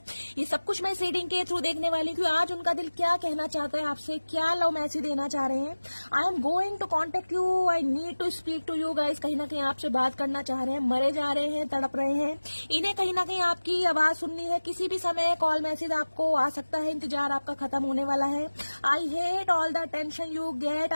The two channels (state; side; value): inverted; both; correlation -1.00